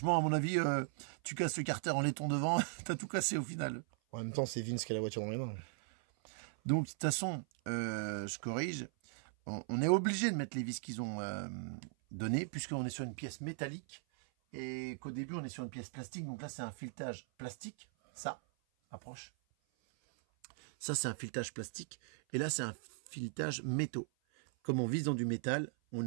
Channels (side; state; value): left; silent; 52 dB below the other